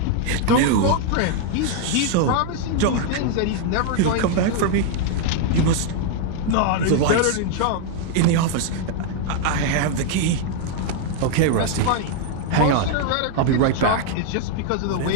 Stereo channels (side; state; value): both; different; correlation 0.00